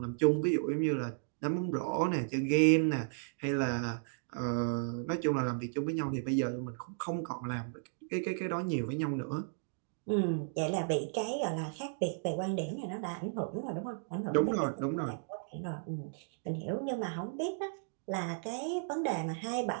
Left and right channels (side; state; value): left; silent; digital silence